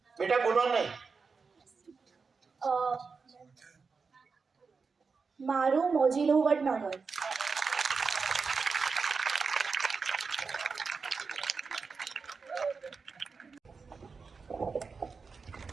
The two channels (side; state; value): left; quieter; 4.9 dB